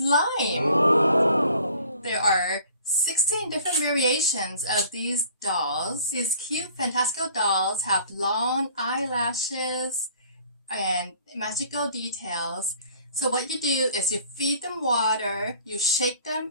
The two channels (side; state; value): both; inverted; correlation -0.52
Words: Oh. There are 16 different variations of these dolls. These cute fantastical dolls have long eyelashes and magical details. So what you do is you feed them water, you shake